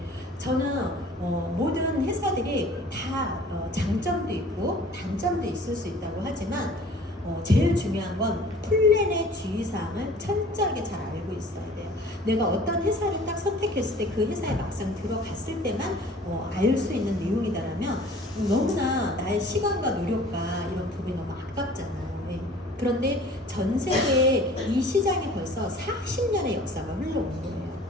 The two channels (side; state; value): both; normal; correlation 0.48